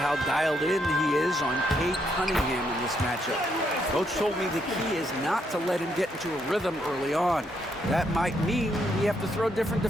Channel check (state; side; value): normal; both; correlation 0.76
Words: dialed in he is on Cade Cunningham in this matchup. Coach told me the key is not to let him get into a rhythm early on. That might mean we have to throw different